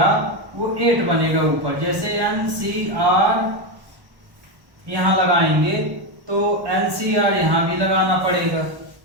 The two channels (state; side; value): late; left; 1.1 ms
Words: वो 8 बनेगा ऊपर। जैसे NCR यहाँ लगाएंगे तो NCR यहाँ भी लगाना पड़ेगा।